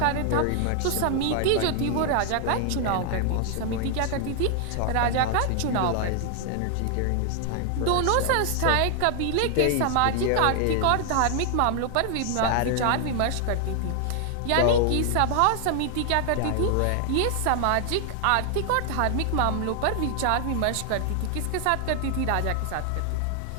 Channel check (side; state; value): both; different; correlation 0.00